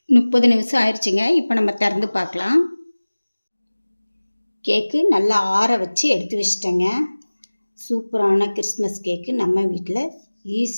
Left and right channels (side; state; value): both; inverted; correlation -1.00